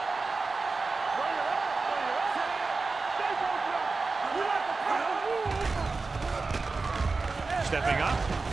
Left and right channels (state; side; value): quieter; left; 4.0 dB